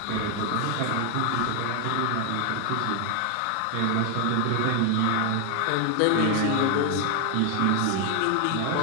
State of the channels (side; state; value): both; different; correlation 0.00